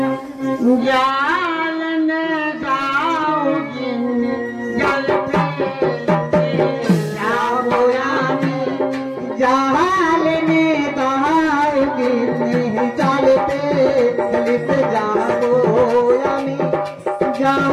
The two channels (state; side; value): identical; both; correlation 1.00